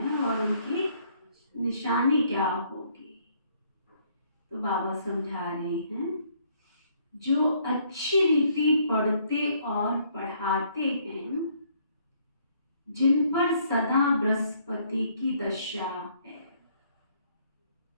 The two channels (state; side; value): inverted; both; correlation -0.66